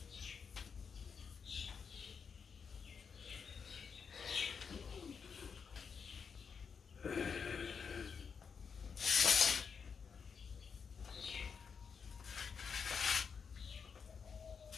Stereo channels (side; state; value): right; quieter; 6.1 dB